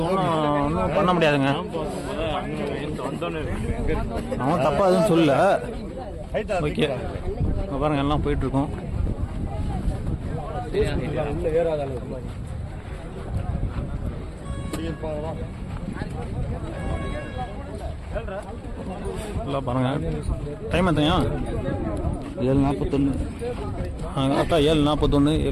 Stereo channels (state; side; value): identical; both; correlation 1.00